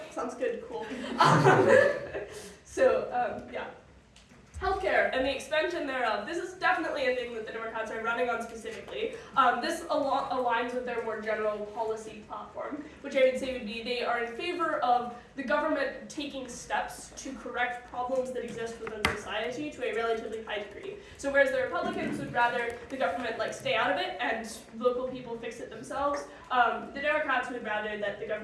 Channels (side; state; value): both; identical; correlation 1.00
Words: sounds good, cool. Yeah. Healthcare and the expansion thereof. This is definitely a thing that the Democrats are running on specifically. This aligns with their more general policy platform, which I would say would be they are in favor of the government taking steps to correct problems that exist within society to a relatively high degree. So whereas the Republicans would rather the government like stay out of it and local people fix it themselves, the Democrats would rather that the